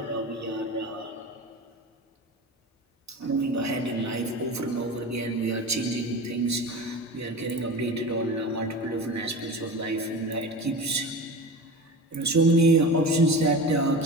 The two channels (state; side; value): normal; both; correlation 0.31